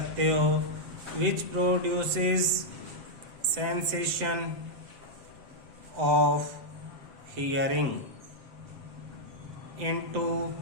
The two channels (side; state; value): left; late; 7.8 ms